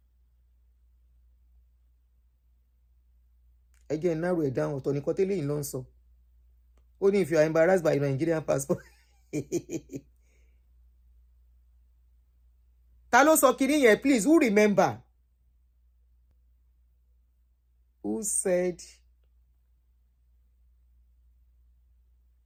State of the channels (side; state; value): both; identical; correlation 1.00